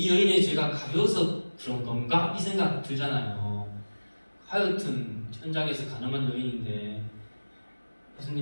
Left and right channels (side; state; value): both; inverted; correlation -1.00